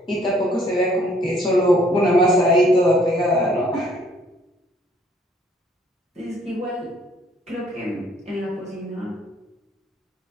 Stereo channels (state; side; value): normal; both; correlation 0.62